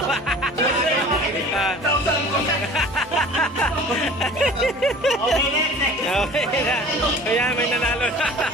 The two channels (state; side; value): normal; both; correlation 0.44